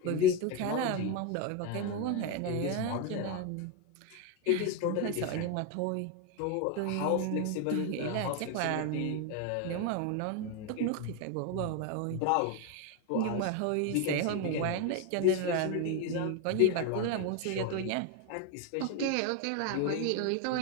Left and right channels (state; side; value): different; both; correlation 0.02